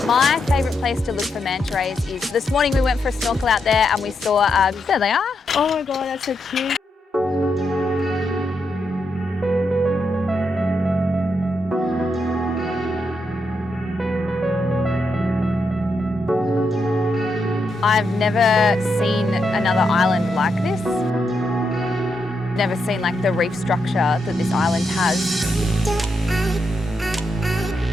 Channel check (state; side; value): normal; both; correlation 0.82